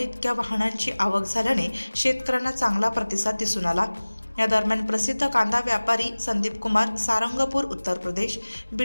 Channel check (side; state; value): both; inverted; correlation -1.00